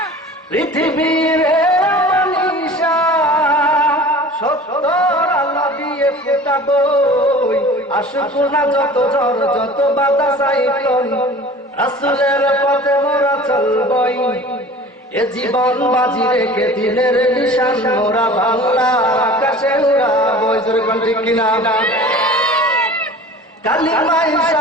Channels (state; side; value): normal; both; correlation 0.42